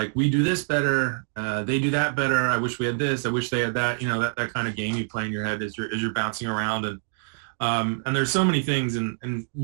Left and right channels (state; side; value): silent; left; digital silence